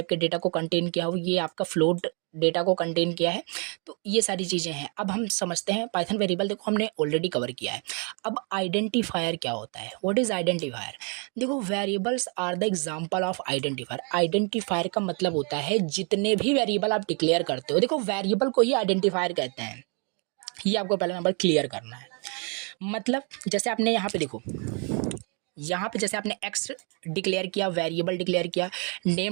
के डेटा को कंटेन किया हुआ है, ये आपका फ्लोट डेटा को कंटेन किया है। तो ये सारी चीज़ें हैं। अब हम समझते हैं पाइथन वेरिएबल, देखो हमने ऑलरेडी कवर किया है। अब आइडेंटिफायर क्या होता है, व्हाट इज़ आइडेंटिफायर। देखो variables are the example of identifier. Identifier का मतलब होता है जितने भी वेरिएबल आप डिक्लेयर करते हो, देखो वेरिएबल को ही आइडेंटिफायर कहते हैं। ये आपको पहला नंबर क्लियर करना है। मतलब जैसे आपने यहाँ पे देखो, यहाँ पे जैसे आपने एक्स डिक्लेयर किया, वेरिएबल डिक्लेयर किया,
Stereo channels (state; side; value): quieter; left; 36.8 dB